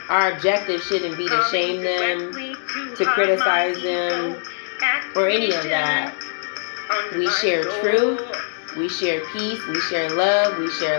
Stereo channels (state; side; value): silent; right; digital silence